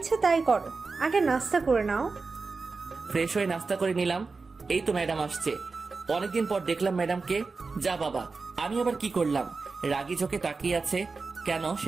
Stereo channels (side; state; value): left; quieter; 4.2 dB